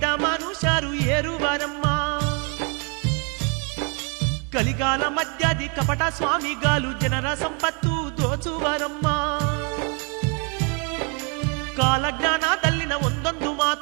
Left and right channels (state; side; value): quieter; left; 35.1 dB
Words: ಮನುಷ್ಯರು ಏರುವರಮ್ಮ. ಕಲಿಗಾಲ ಮಧ್ಯಾದಿ ಕಪಟ ಸ್ವಾಮಿಗಾಲು ಜನರ ಸಂಪತ್ತು ದೋಚುವರಮ್ಮ. ಕಾಲಜ್ಞಾನದಲ್ಲಿನ ಒಂದೊಂದು